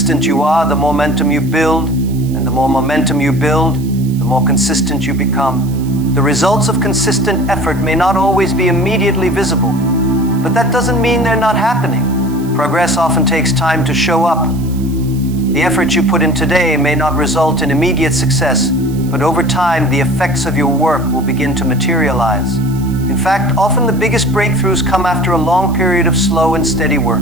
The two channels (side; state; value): right; noise; hiss, 21 dB below the sound